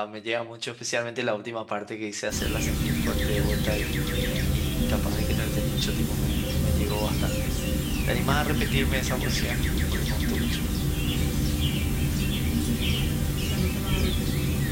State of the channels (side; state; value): both; identical; correlation 1.00